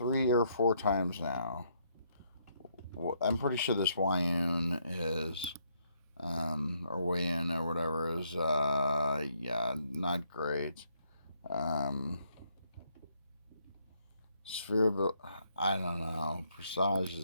or 4 times now. I'm pretty sure this Wayun is, or Wayun or whatever is, yeah, not great. Sphere of, I don't know. Presage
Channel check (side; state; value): both; inverted; correlation -0.73